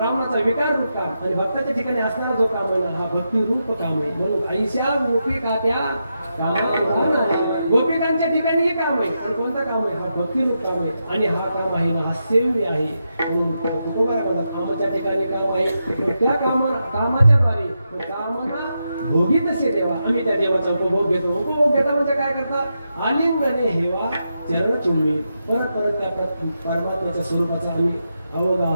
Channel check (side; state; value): both; inverted; correlation -0.86